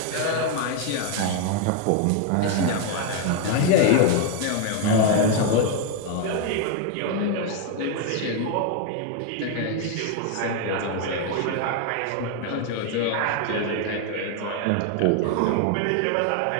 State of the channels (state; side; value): different; both; correlation 0.01